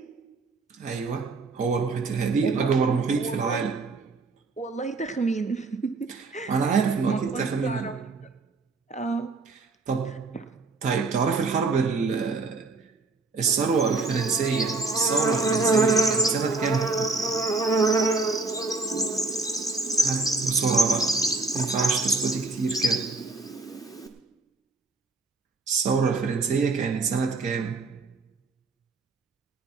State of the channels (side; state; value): left; quieter; 3.7 dB